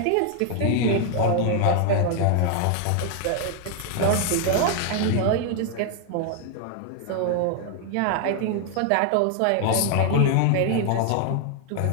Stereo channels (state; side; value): different; both; correlation 0.00